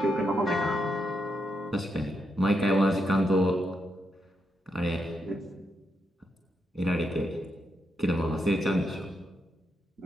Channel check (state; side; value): normal; both; correlation 0.82